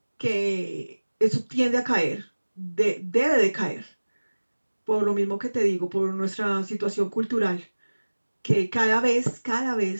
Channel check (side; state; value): both; inverted; correlation -1.00